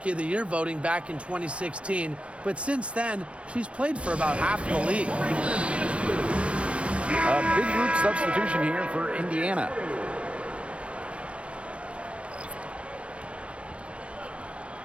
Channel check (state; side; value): late; left; 0.060 ms